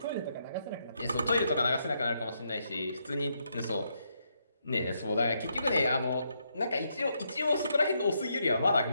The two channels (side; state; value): both; inverted; correlation -0.78